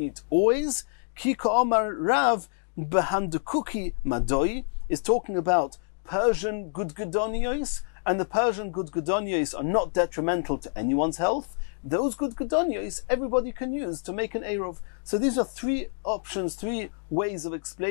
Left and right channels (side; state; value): right; silent; digital silence